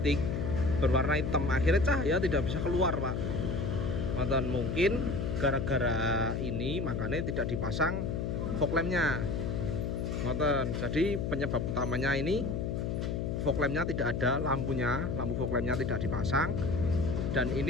berwarna hitam, akhirnya cahaya tidak bisa keluar Pak. Dan mungkin gara-gara ini makanya tidak dipasang fog lamp-nya. Jadi penyebab utamanya ini fog lamp-nya tidak ada, lampunya, lampu fog lamp-nya tidak dipasang, dan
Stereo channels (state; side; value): noise; left; hum, 1 dB below the sound